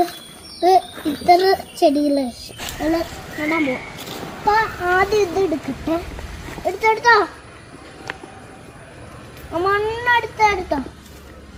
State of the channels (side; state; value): both; identical; correlation 1.00